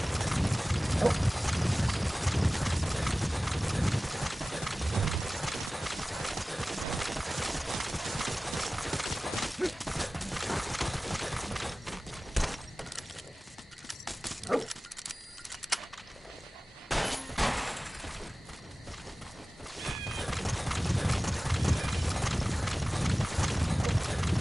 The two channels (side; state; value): both; normal; correlation 0.97